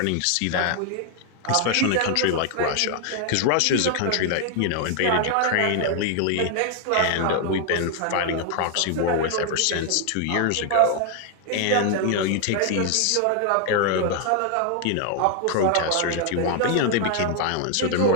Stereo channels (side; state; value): both; different; correlation 0.00